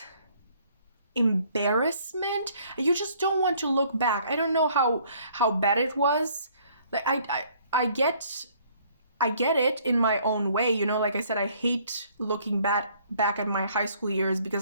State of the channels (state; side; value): inverted; both; correlation -0.61